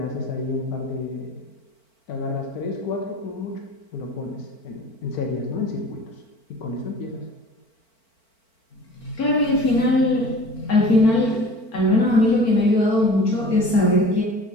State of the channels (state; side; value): late; right; 4.5 ms